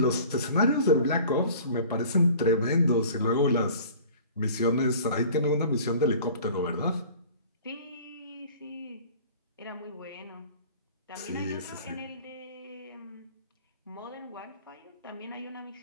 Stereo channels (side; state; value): both; inverted; correlation -0.46